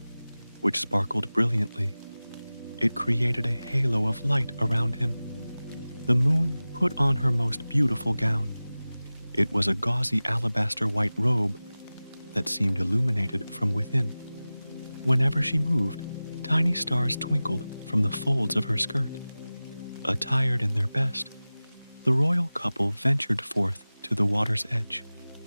which sparkled brilliantly. It created a halo of light around him. The moon put on her most beautiful gown. It was a gauzy alabaster white robe that seemed illuminated from within. Whenever she moved, tiny stars twinkled from the folds of her skirt. Attired in their best, the royal couple ventured forth to the water's edge.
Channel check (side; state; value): both; inverted; correlation -0.97